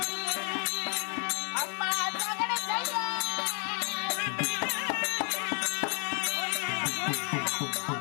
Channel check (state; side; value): quieter; right; 38.6 dB